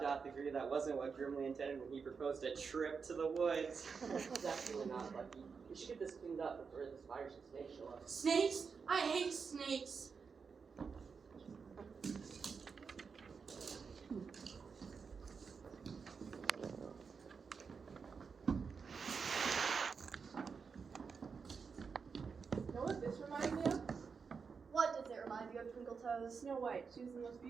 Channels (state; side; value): quieter; left; 5.5 dB